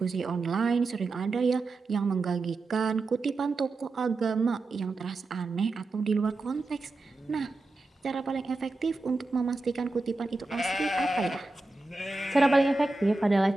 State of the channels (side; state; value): left; quieter; 3.2 dB